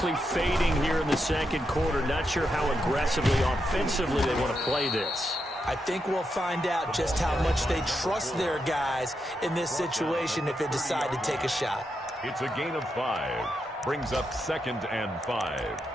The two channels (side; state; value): both; normal; correlation 0.84